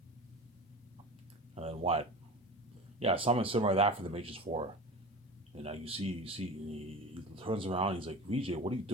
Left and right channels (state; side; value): normal; both; correlation 0.32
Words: And then what? Yeah, something similar to that for the Matrix 4. And now you see, he turns around, he's like, VJ, what are you